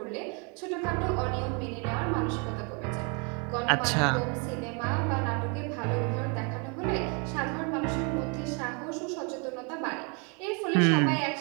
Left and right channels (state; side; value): quieter; left; 34.3 dB